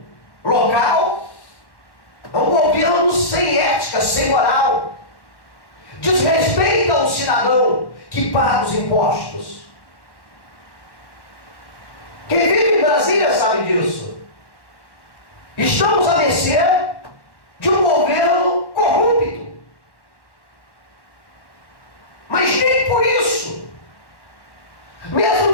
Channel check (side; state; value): right; late; 1.1 ms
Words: local é um governo sem ética, sem moral. Desrespeita o cidadão que paga os impostos. Quem vive em Brasília sabe disso. Estamos à mercê de um governo corrupto. Mas nem por isso, mesmo